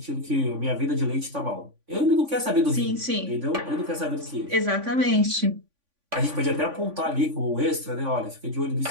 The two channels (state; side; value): late; left; 3.5 ms